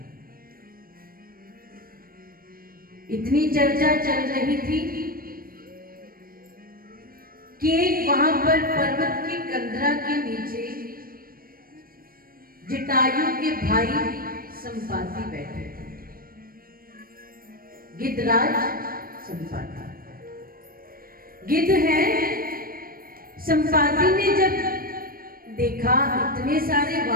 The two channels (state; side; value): late; left; 0.42 ms